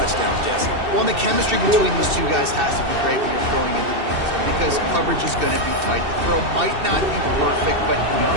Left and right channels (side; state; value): left; late; 2.7 ms